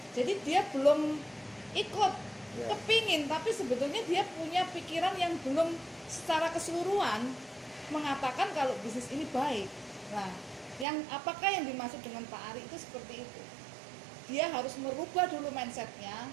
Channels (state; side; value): drops out; left; at 10.9 s